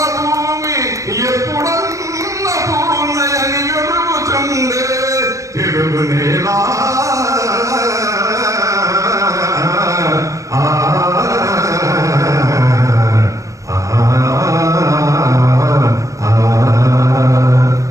భూమి ఎప్పుడన్న పూర్ణయని వెలుగుచుండే తెలుగు నేల.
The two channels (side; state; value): left; late; 0.16 ms